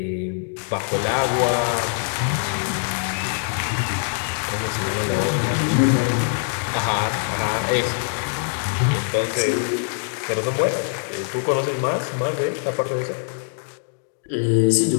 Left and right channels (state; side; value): silent; right; digital silence